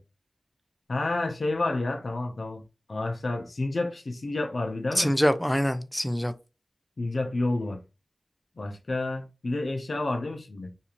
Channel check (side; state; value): both; normal; correlation 0.98